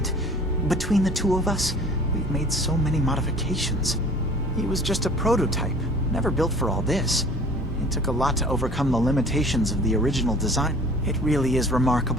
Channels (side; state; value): both; normal; correlation 0.47